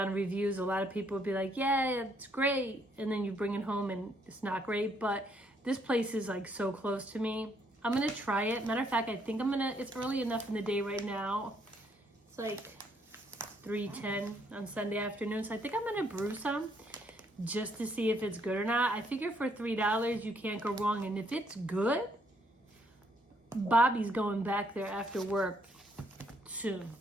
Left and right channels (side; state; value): both; normal; correlation 0.70